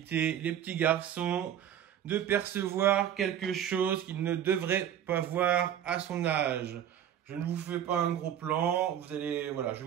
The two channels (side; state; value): left; quieter; 10.1 dB